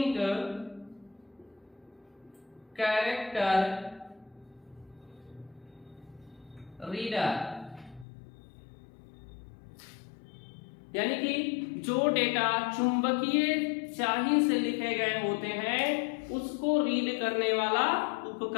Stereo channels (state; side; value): drops out; right; at 8.1 s